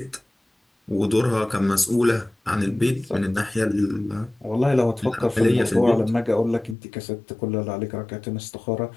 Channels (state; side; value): drops out; right; at 6.8 s